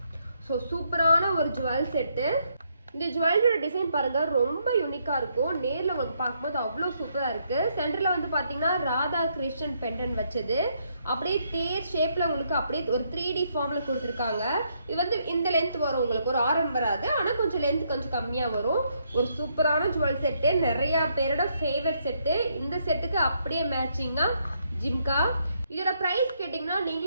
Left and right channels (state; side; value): inverted; both; correlation -0.74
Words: ஸோ சூப்பரான ஒரு ஜுவல் செட்டு. இந்த ஜுவல்லரியோட டிசைன் பாருங்க, ரொம்ப யூனிக்காக இருக்கும். நேரில் உங்களுக்கு பார்க்கும்போது அவ்வளோ சூப்பராக இருக்குது. சென்டரில் வந்து பார்த்தீங்கன்னா ராதா கிருஷ்ணன் பெண்டன் வச்சது, அப்படியே தேர் ஷேப்பில் உங்களுக்கு அப்படியே ஒரு 3D ஃபார்மில் கொடுத்துருக்காங்க. இது வந்து இந்த லென்த் வரும், உங்களுக்கு ஒரு ஆரம் வராது, ஆனால் கொஞ்சம் லென்த் கொஞ்சம் கம்மியாக வரும். ஒரு சூப்பரான ஜுவல் செட்டு, நிறையா பேரோட ஃபேவரட் செட்டு. இந்த செட்டுக்கு அப்படியே மேட்சிங்காக ஜிம்கா. இதோட ப்ரைஸ் கேட்டிங்கன்னா